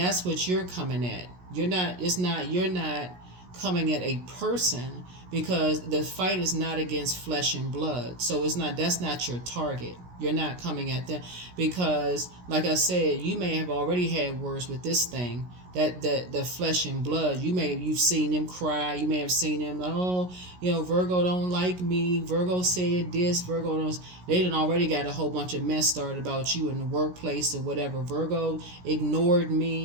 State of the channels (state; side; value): late; left; 17 ms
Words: what you're coming at. You're not coming at a person, because the fight is not against flesh and blood. So that's not your target. You're not coming at them, because, like I said, you may have already had words with this thing, that the flesh and blood. You've seen them cry. You may have seen them, oh, Virgo don't like me. Virgo said this. Virgo don't. They done already got a whole bunch of mess started about you in the workplace or whatever. Virgo ignored